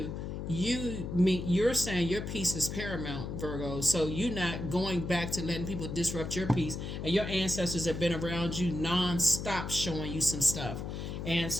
You're saying your peace is paramount, Virgo. So you're not going back to letting people disrupt your peace. And your ancestors have been around you non-stop showing you some stuff. And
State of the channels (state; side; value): noise; left; hum, 5 dB below the sound